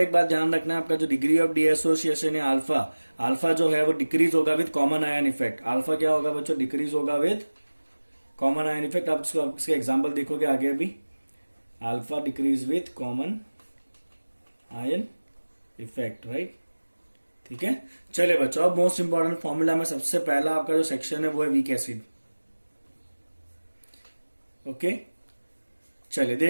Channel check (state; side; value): inverted; both; correlation -1.00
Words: बात ध्यान रखना है, आपका जो डिग्री ऑफ डीएसोसिएशन है अल्फा, अल्फा जो है वो डिक्रीज होगा with common ion effect. Alpha क्या होगा बच्चों? डिक्रीज होगा विद कॉमन आयन इफेक्ट। आप इसके एग्जांपल देखोगे आगे अभी। Alpha decrease with common ion effect, right, ठीक है। चलिए बच्चों, अब मोस्ट इंपॉर्टेंट फॉर्मूला में सबसे पहला आपका जो सेक्शन है वो है वीक एसिड। ओके, चलिए